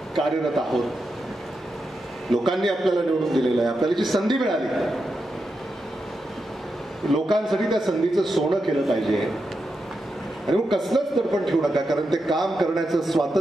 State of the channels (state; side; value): normal; both; correlation 0.87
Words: कार्यरत आहोत. लोकांनी आपल्याला निवडून दिलेलं आहे, आपल्याला जी संधी मिळाली, लोकांसाठी त्या संधीचं सोनं केलं पाहिजे. आणि मग कसलंच दडपण ठेवू नका, कारण ते काम करण्याचं